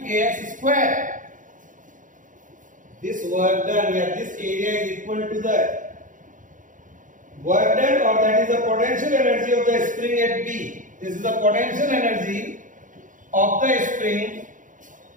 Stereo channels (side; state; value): left; late; 0.38 ms